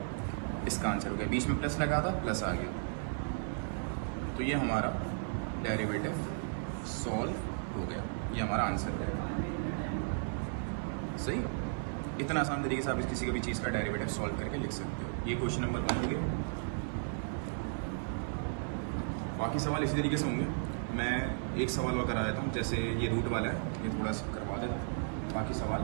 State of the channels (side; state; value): left; silent; 55 dB below the other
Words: इसका आंसर हो गया। बीच में प्लस लगा था, प्लस आ गया, तो ये हमारा डेरिवेटिव सॉल्व हो गया, ये हमारा आंसर है। सही, इतना आसान तरीके से आप किसी का भी चीज़ का डेरिवेटिव सॉल्व करके लिख सकते हो। ये क्वेश्चन नंबर 1 हो गया। बाकी सवाल इसी तरीके से होंगे। मैं एक सवाल और करा देता हूँ, जैसे ये रूट वाला है ये थोड़ा सा करवा देता हूँ, बाकी